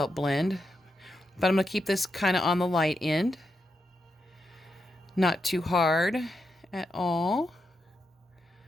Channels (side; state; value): both; normal; correlation 0.85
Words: blend. But I'm going to keep this kind of on the light end. Not too hard at all.